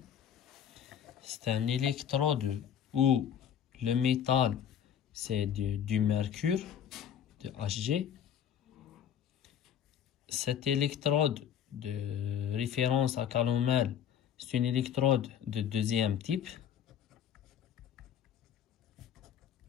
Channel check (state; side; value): quieter; right; 9.0 dB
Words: C'est un électrode où le métal, c'est du mercure, de Hg. Cette électrode de référence à calomel, c'est une électrode de deuxième type.